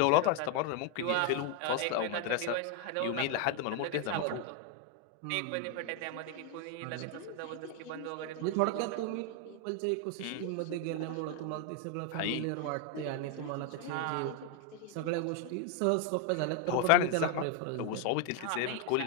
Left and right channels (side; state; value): both; different; correlation 0.01